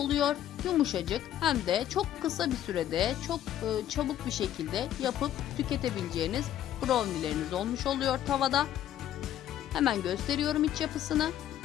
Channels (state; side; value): quieter; right; 11.5 dB